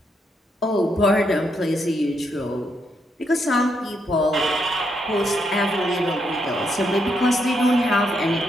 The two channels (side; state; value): both; normal; correlation 0.78